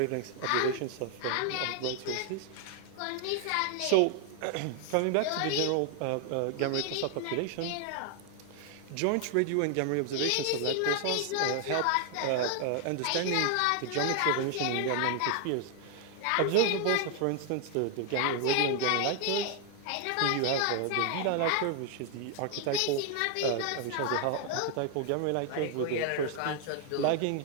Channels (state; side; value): different; both; correlation 0.00